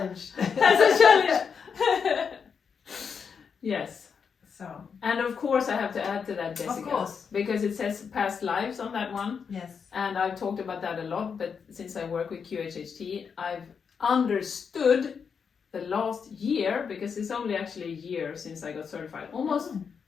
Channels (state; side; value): quieter; right; 6.3 dB